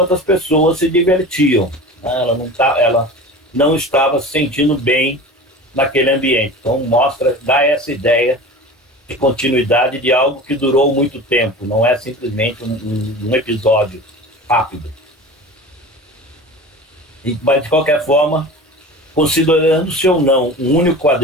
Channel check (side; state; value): both; normal; correlation 0.35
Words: as pessoas se divertiam. Né? Ela não estava se sentindo bem naquele ambiente. Então dá essa ideia de continuidade de algo que durou muito tempo, não é simplesmente um episódio rápido. Mas, de qualquer forma, considerando-se ou não um único